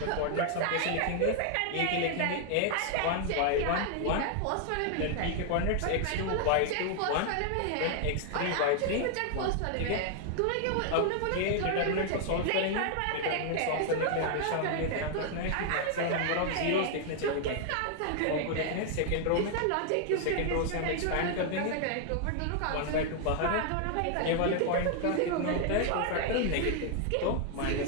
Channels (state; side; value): different; both; correlation 0.00